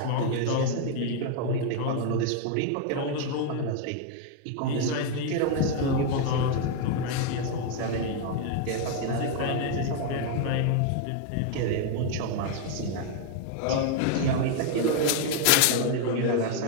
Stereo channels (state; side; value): different; both; correlation 0.00